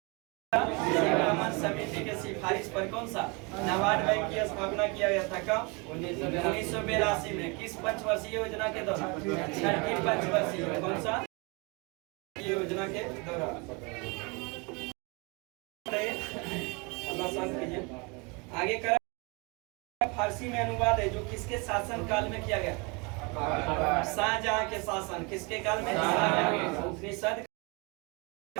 समिति के सिफारिश पर कौन सा नबार्ड बैंक की स्थापना किया गया था? कब? 1982 में। किस पंचवर्षीय योजना के दौरान? छठी पंचवर्षीय। कौन सा योजना के दौरान? आगे कर फारसी में अनुवाद है जो किसके शासन काल में किया गया? शाहजहां के शासन, किसके काल में? उपनिषद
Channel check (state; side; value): quieter; left; 29.7 dB